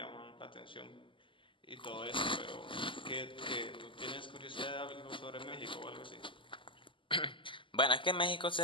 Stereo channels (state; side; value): late; right; 0.25 ms